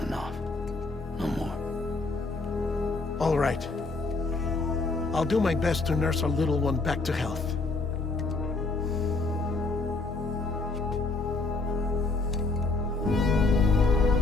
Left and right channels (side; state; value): right; quieter; 3.5 dB